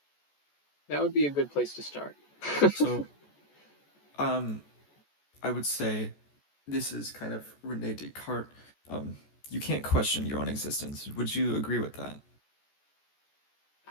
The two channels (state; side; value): late; right; 14 ms